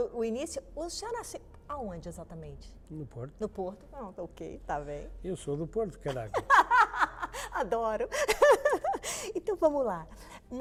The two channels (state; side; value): identical; both; correlation 1.00